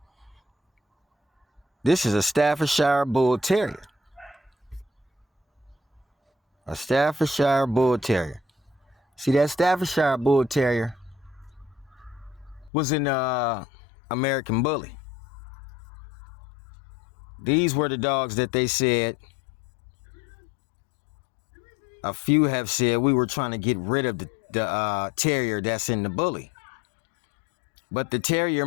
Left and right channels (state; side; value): drops out; right; at 12.7 s